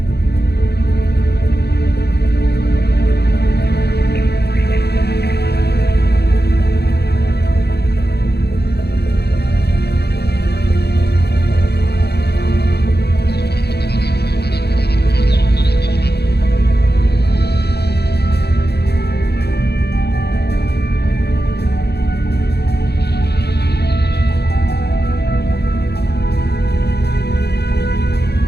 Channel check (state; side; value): late; right; 0.48 ms